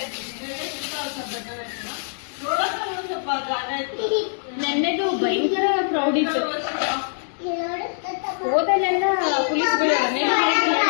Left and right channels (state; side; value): silent; right; digital silence